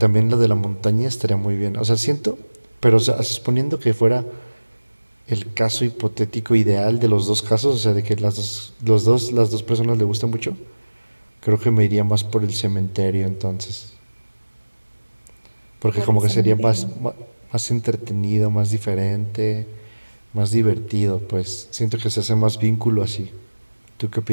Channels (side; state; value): both; inverted; correlation -1.00